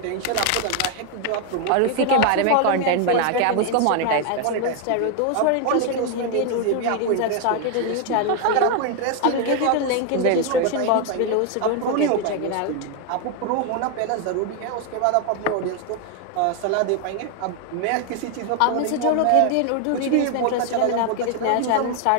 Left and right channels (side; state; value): both; different; correlation 0.01